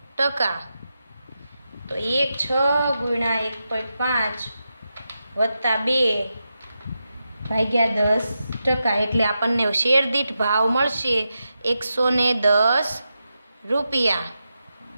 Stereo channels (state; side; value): inverted; both; correlation -0.88